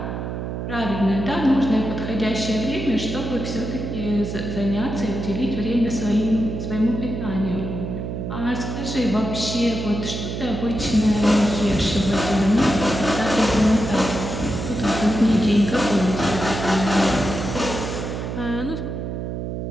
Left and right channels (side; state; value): right; noise; hum, 5 dB below the sound